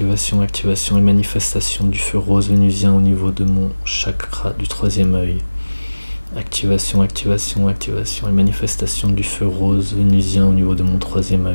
activation et manifestation du feu rose vénusien au niveau de mon chakra du troisième œil. Activation, activation, activation et manifestation du feu rose vénusien au niveau de mon troisième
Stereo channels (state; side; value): inverted; both; correlation -1.00